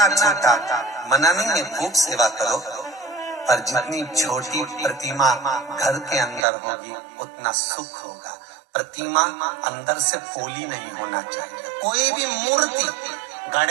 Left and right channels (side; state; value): left; drops out; at 6.5 s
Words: छोटा, मना नहीं है, खूब सेवा करो, पर जितनी छोटी प्रतिमा घर के अंदर होगी उतना सुख होगा। प्रतिमा अंदर से पोली नहीं होना चाहिए। कोई भी मूर्ति,